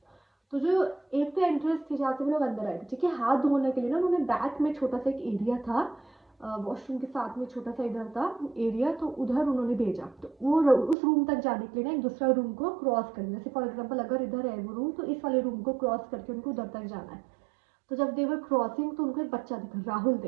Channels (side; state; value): left; drops out; at 11.0 s